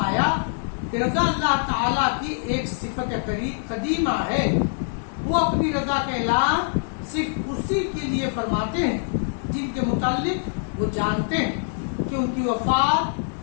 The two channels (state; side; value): silent; right; digital silence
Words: کہ رضا اللہ تعالیٰ کی ایک صفت قدیمہ ہے، وہ اپنی رضا کا اعلان صرف اسی کے لیے فرماتے ہیں جن کے متعلق وہ جانتے ہیں، کہ ان کی